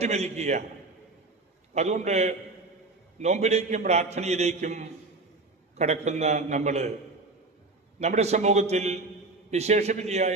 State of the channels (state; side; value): quieter; left; 3.4 dB